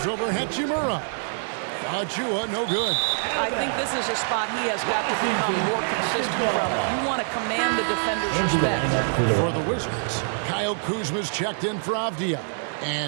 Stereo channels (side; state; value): left; silent; digital silence